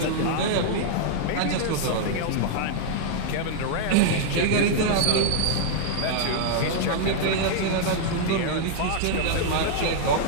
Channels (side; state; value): both; different; correlation -0.01